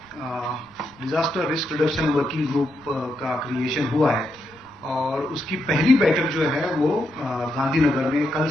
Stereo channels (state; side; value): noise; right; rumble, 28 dB below the sound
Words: disaster risk reduction working group का क्रिएशन हुआ है और उसकी पहली बैठक जो है वो गांधीनगर में कल